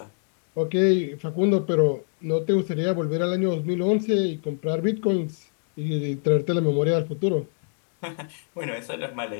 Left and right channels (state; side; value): silent; right; digital silence